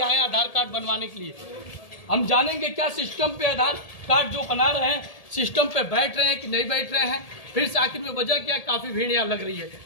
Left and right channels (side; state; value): right; late; 1.8 ms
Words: आए, आधार कार्ड बनवाने के लिए। हम जानेंगे क्या सिस्टम पे आधार कार्ड जो बना रहे हैं सिस्टम पे बैठ रहे हैं कि नहीं बैठ रहे हैं, फिर से आखिर में वजह क्या, काफी भीड़ यहाँ लग रही है।